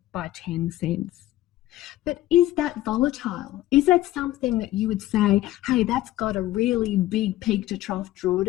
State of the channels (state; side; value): quieter; right; 15.3 dB